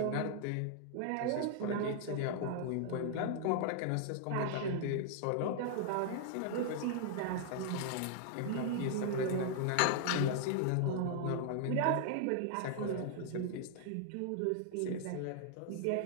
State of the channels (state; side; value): different; both; correlation 0.00